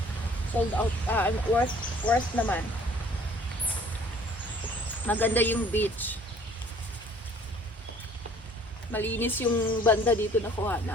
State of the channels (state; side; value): normal; both; correlation 0.55